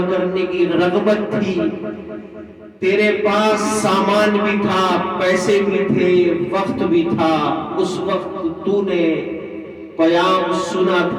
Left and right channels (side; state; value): both; identical; correlation 1.00